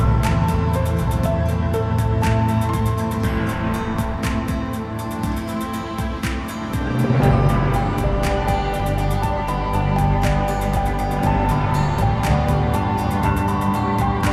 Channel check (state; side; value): identical; both; correlation 1.00